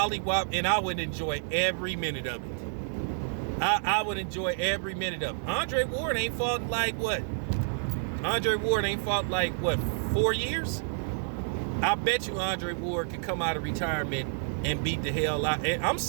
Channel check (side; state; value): left; silent; digital silence